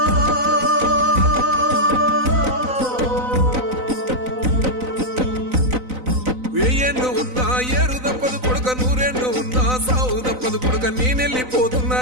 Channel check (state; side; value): late; left; 4.0 ms